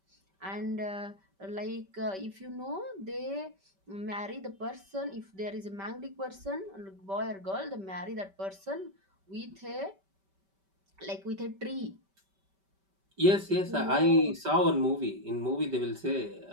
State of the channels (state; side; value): late; left; 5.2 ms